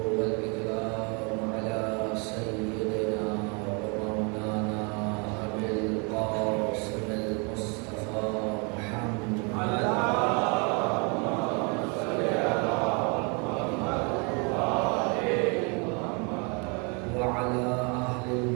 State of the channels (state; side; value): quieter; left; 33.3 dB